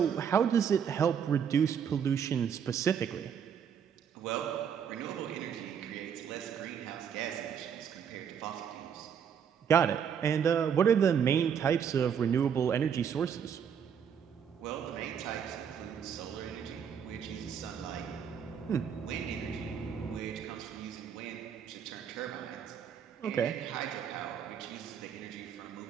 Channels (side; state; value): left; quieter; 7.8 dB